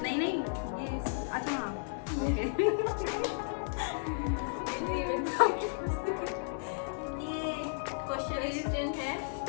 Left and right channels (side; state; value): right; silent; digital silence